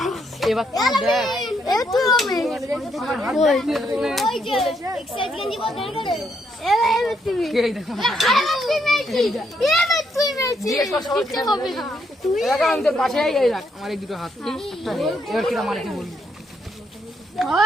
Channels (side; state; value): both; normal; correlation 0.75